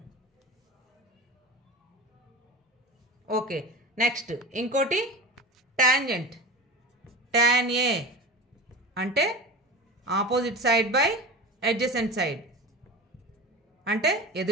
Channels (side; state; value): both; normal; correlation 0.30